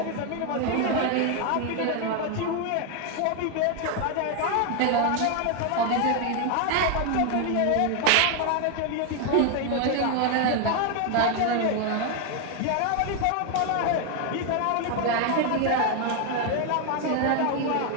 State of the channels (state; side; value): different; both; correlation 0.01